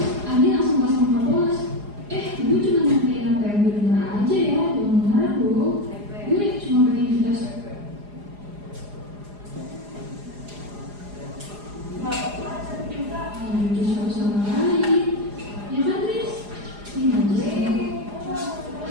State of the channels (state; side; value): late; left; 4.9 ms